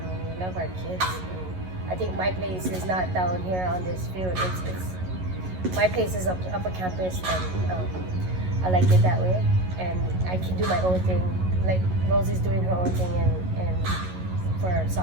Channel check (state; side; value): late; left; 11 ms